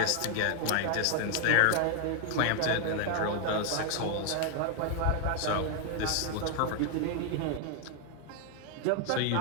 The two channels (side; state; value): both; different; correlation 0.00